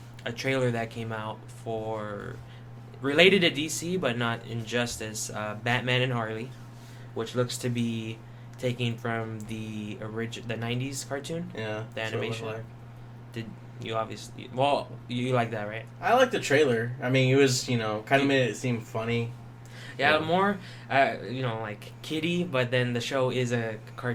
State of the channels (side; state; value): both; identical; correlation 1.00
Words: trailer that came out for, related to DC but not Injustice, Batman and Harley, which looks to be taking from the 90s cartoon. Yeah. The animation. Like. Did you obviously? You like that, right? I like the trailer. I mean, it was, kind of made it seem funny. Yeah, more, like kiddie, but then the show is a